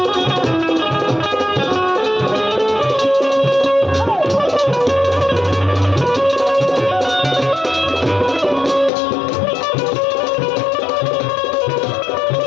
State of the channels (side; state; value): right; drops out; at 8.9 s